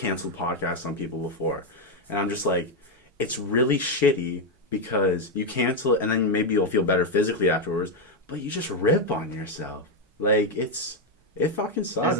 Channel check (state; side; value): normal; both; correlation 0.05